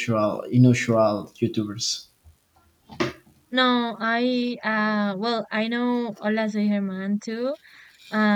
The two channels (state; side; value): identical; both; correlation 1.00